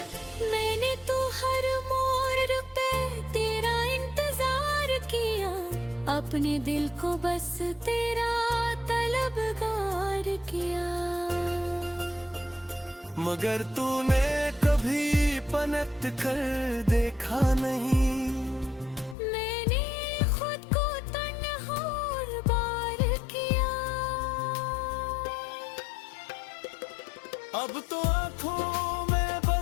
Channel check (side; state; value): right; drops out; at 19.2 s